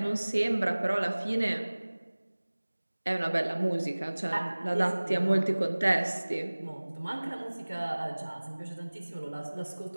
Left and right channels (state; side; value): inverted; both; correlation -1.00